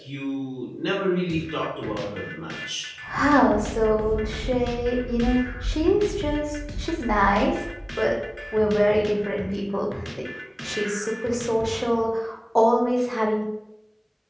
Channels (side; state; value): both; identical; correlation 1.00